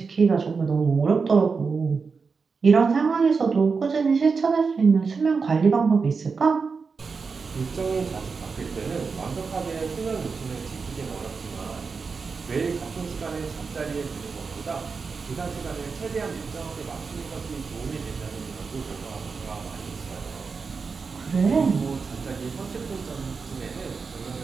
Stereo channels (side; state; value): left; quieter; 5.0 dB